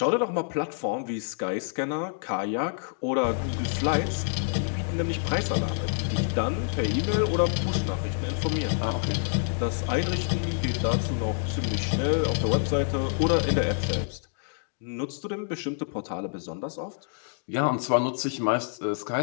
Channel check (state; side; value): silent; right; digital silence